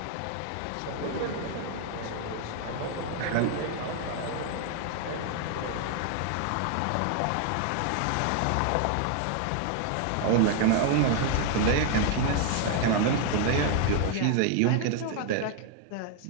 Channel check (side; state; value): both; different; correlation 0.00